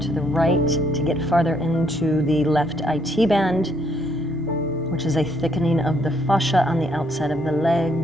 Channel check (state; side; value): normal; both; correlation 0.70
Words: the right to get farther into the left IT band. which is a thickening of the fascia on the outside of the